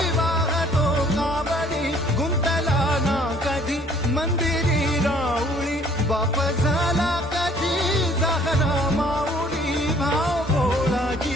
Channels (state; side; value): normal; both; correlation 0.58